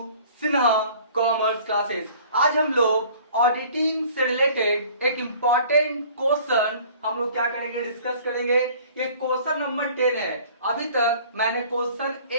Sinha commerce classes. आज हम लोग ऑडिटिंग से रिलेटेड एक इम्पॉर्टेंट क्वेश्चन हम लोग क्या करेंगे, डिस्कस करेंगे। ये क्वेश्चन नंबर 10 है। अभी तक मैंने क्वेश्चन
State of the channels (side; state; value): both; inverted; correlation -0.50